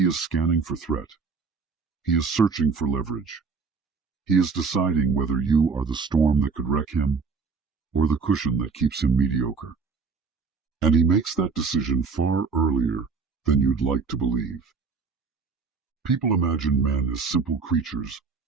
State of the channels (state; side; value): quieter; left; 5.0 dB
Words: is scanning for threat. He is searching for leverage. He is deciding whether you are the storm that could wreck him or the cushion that keeps him mediocre. And he makes that decision far earlier than you'd like to believe. People imagine men as simple creatures,